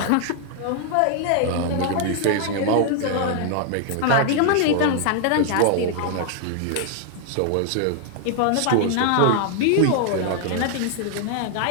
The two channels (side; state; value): both; different; correlation 0.00